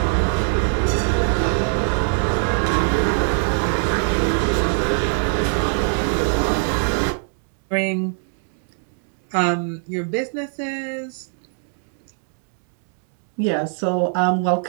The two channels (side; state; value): left; silent; 58 dB below the other